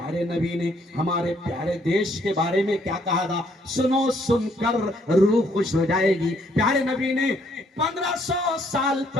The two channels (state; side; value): normal; both; correlation 0.68